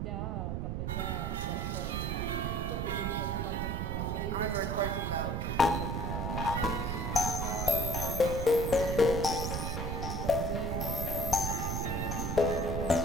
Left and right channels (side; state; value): right; noise; rumble, 1 dB below the sound